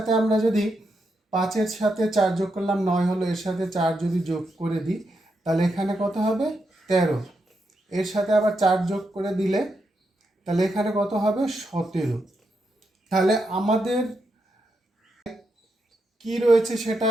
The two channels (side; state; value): both; normal; correlation 0.83